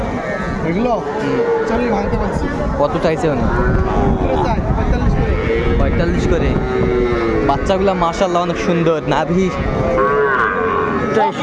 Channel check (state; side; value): identical; both; correlation 1.00